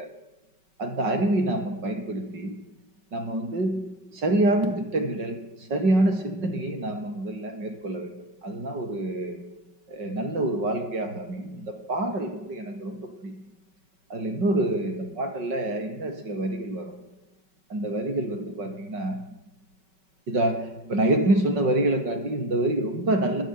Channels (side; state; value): left; late; 5.3 ms